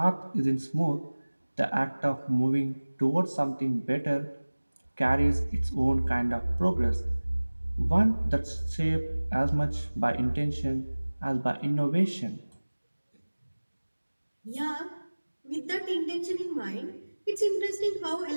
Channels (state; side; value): inverted; both; correlation -1.00